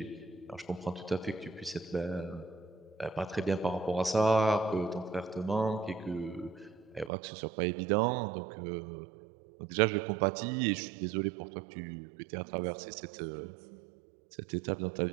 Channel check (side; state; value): left; drops out; at 7.1 s